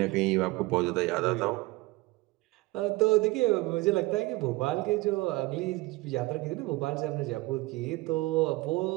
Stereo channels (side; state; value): left; quieter; 21.3 dB